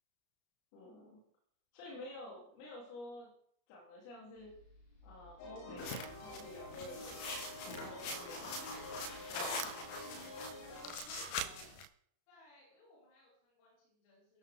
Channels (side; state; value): right; late; 33 ms